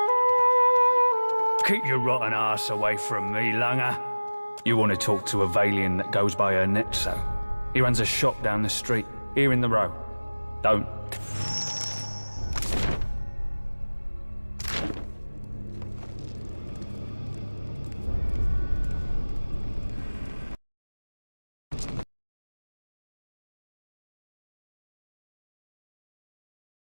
Keep your rotten ass away from me, Langer. You want to talk to a Valian that goes by her Netso. He runs a shop down the street, here in the row. Don't.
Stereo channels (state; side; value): inverted; both; correlation -1.00